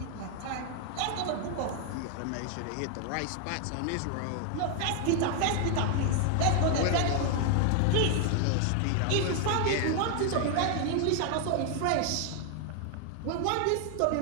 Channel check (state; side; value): different; both; correlation 0.00